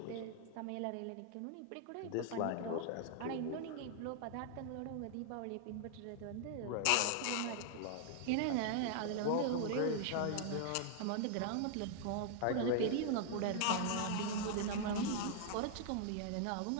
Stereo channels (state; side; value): different; both; correlation 0.00